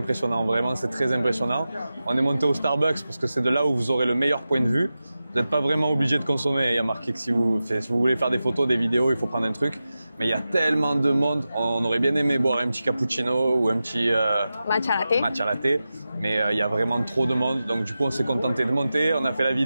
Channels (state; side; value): inverted; both; correlation -0.93